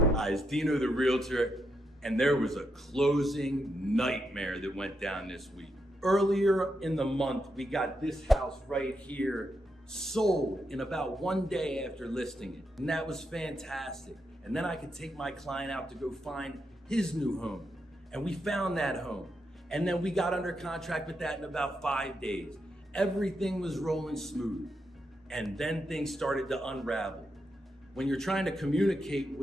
Dino the realtor, and there was a closing nightmare that went down this week. Earlier in the month, we got this house right here sold in about 1 day after listing it. And that was fantastic. And then I could take my client out to go find his new home. And we found that home. And then we got under contract with that in about 5 days. Everything was rolling smooth. And then things started to unravel. When you're trying to communicate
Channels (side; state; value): both; normal; correlation 0.82